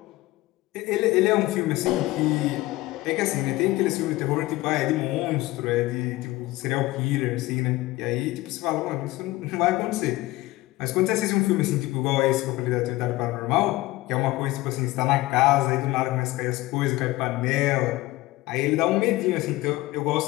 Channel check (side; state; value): right; quieter; 18.8 dB